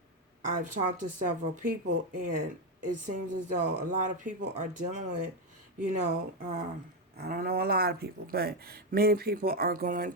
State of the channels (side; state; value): both; normal; correlation 0.07